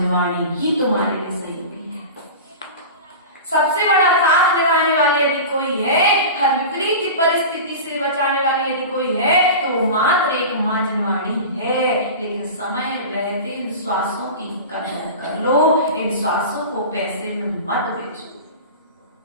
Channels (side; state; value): both; inverted; correlation -0.31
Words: ही तुम्हारे लिए सहयोगी है। सबसे बड़ा साथ लगाने वाले यदि कोई है, हर विपरीत परिस्थिति से बचाने वाले यदि कोई है, तो मात्र एक मां जिनवाणी है। लेकिन समय रहते इन श्वासों की कदर कर लो, इन श्वासों को पैसे में मत बेचो।